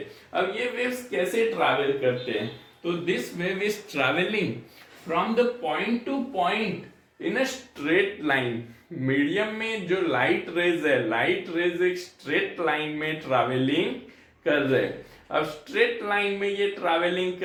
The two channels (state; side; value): identical; both; correlation 1.00